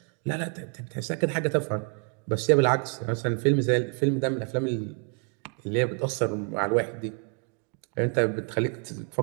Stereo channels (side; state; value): left; quieter; 39.1 dB